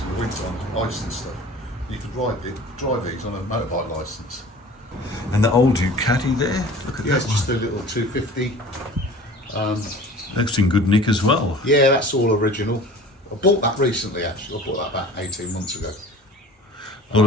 in the winter on ice and stuff. You could drive these on a motorbike licence. And the old Ducati there, look at Yeah, that it's just a one. little 250. That's in good nick as well. Yeah, that's all original. I bought that recently, actually. I bought that about 18 months ago. A lot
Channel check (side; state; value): both; normal; correlation 0.43